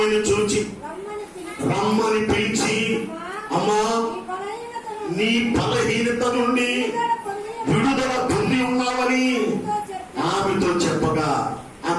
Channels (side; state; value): both; identical; correlation 1.00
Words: చూచి రమ్మని పిలిచి, అమ్మా నీ బలహీనత నుండి విడుదల పొంది ఉన్నావని ఆమెతో చెప్పగా